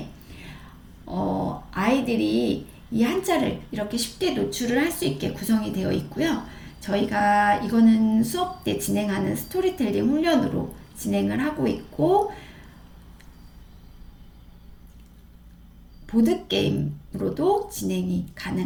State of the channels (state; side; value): identical; both; correlation 1.00